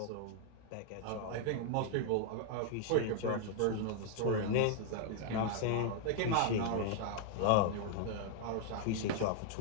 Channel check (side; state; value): both; different; correlation 0.00